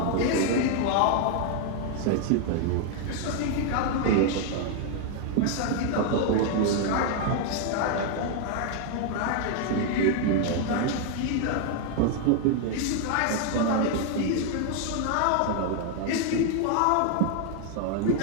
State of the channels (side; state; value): both; different; correlation 0.00